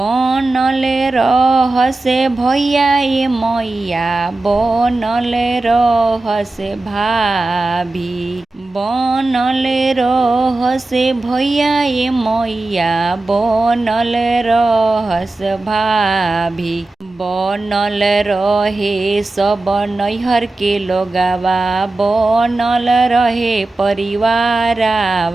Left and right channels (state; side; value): quieter; left; 3.0 dB